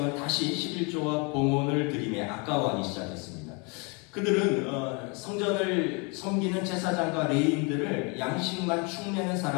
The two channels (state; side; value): quieter; right; 32.2 dB